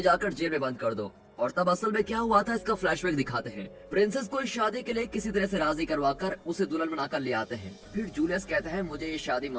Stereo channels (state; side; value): identical; both; correlation 1.00